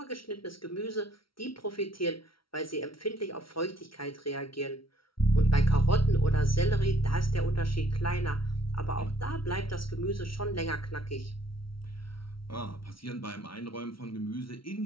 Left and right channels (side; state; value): right; late; 0.74 ms